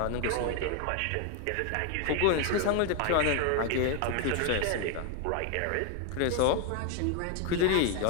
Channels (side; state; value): both; different; correlation 0.01